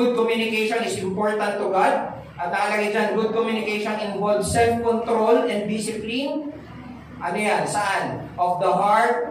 communication is important to God. At nakalagay dyan, good communication involves self-control and discipline. Ano yan? Saan? Of the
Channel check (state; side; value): identical; both; correlation 1.00